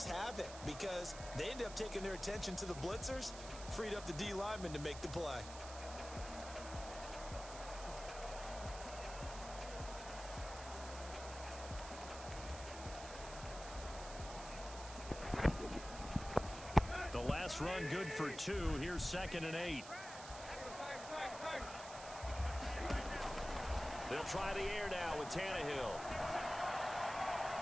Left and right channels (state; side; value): noise; right; hiss, 12 dB below the sound